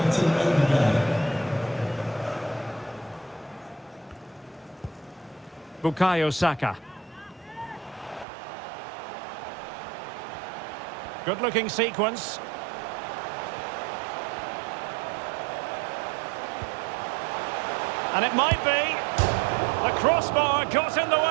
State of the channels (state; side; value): drops out; left; at 8.2 s